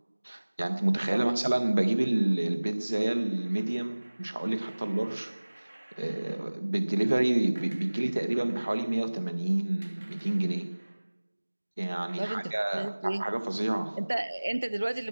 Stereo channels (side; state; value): both; inverted; correlation -1.00